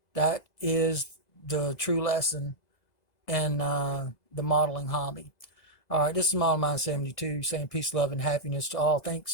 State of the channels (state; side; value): late; right; 2.0 ms